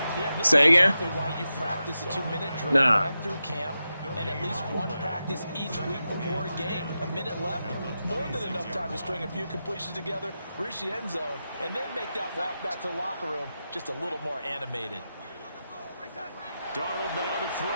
Yeah, this Say is again? exactly why you practice a 2-minute drill Nah. right through camp, and at least one practice each week before a game. A minute left, more than enough time to string a few completions together, reach the end zone, and then make that walk back to the locker room just a little more animated. Darnold now to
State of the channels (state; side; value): inverted; both; correlation -0.90